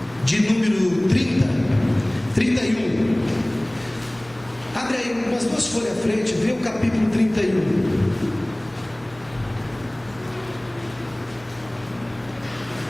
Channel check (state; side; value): noise; left; hum, 27 dB below the sound